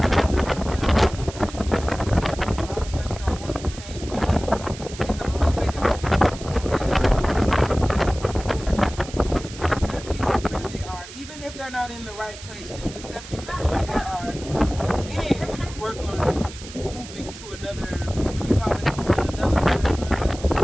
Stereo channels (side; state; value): right; noise; hiss, 15 dB below the sound